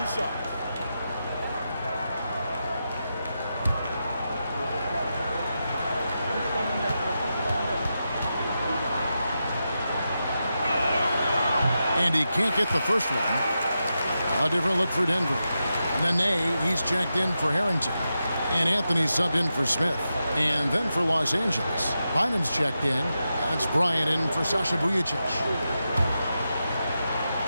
shots. And he can't get the first one. A different look for Denver. Nene, he's checked in for Harrington. And Anthony subbed in for Smith. And then for Los Angeles, Bynum's checked in. That's Bryant in for Sasha Vujacic.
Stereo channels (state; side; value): inverted; both; correlation -0.89